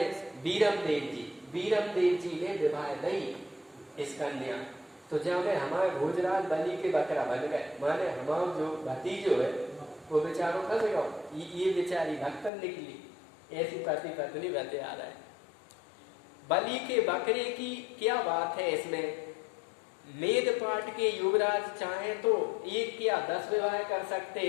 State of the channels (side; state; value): right; drops out; at 12.5 s